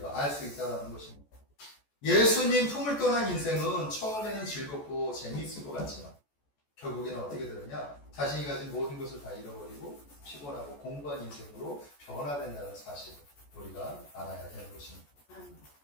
알 수 있다는 것입니다. 예수님 품을 떠난 인생은 처음에는 즐겁고 재미있을 것 같지만 결국에는 어떻게 되느냐? 자신이 가진 모든 것을 다 잃어버리고 피곤하고 공부한 인생으로 변화된다는 사실을 우리가 알아야 되는 것입니다.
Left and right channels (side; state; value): right; late; 14 ms